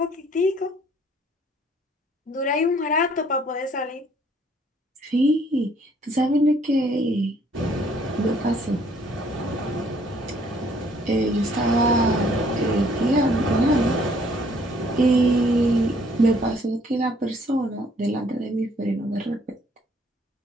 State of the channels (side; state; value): both; normal; correlation 0.62